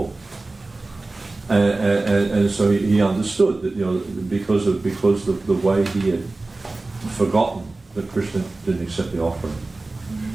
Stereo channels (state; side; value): quieter; left; 3.2 dB